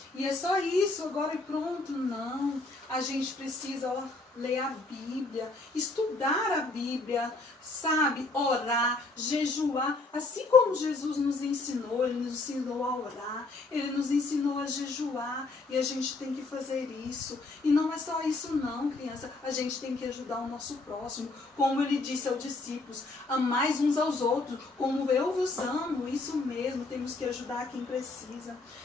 E é só isso, agora e pronto. Não. A gente precisa, ó, ler a Bíblia, estudar a Bíblia, sabe? Orar, jejuar. Assim como Jesus nos ensinou, Ele nos ensinou a orar, Ele nos ensinou a jejuar. E a gente tem que fazer isso. E não é só isso não, criança. A gente tem que ajudar o nosso próximo. Como Ele disse aos discípulos, amais uns aos outros, como eu vos amo. Isso mesmo, temos que ajudar quem precisa.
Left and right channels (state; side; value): quieter; right; 3.3 dB